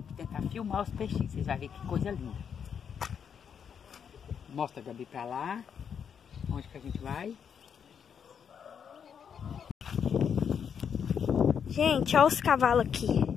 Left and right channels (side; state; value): right; quieter; 7.5 dB